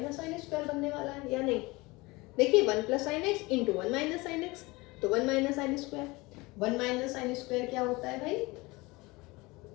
साइन स्क्वायर बनने वाला है या नहीं। देखिए 1 plus sine x into 1 minus sine x, तो 1 minus sine square, 1 minus sine square क्या होता है भाई,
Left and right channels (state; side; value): quieter; right; 23.1 dB